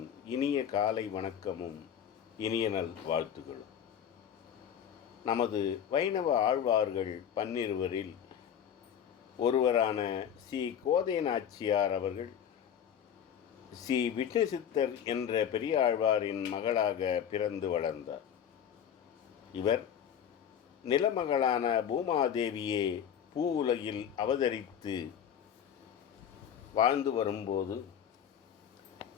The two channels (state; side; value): quieter; right; 8.9 dB